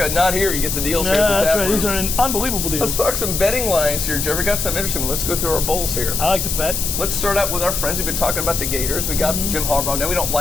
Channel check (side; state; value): left; noise; hiss, 2 dB below the sound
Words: Not here. You get the deals here at the That's tap right. room. These are unbelievable Let's deals. talk some betting lines here, Jeffrey. Got some interesting. Let's go through our bowls here. I like to bet. Let's start out with our friends. We've been talking about the Gators. We got Jim Harbaugh. Now we don't